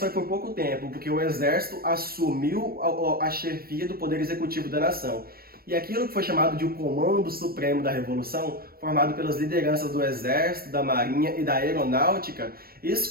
por pouco tempo, porque o exército assumiu a chefia do poder executivo da nação. E aquilo que foi chamado de o Comando Supremo da Revolução, formado pelas lideranças do Exército, da Marinha e da Aeronáutica,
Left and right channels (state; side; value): late; left; 0.44 ms